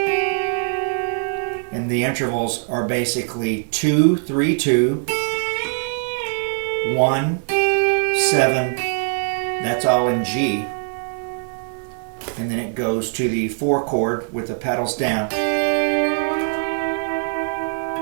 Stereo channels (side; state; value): left; silent; 58 dB below the other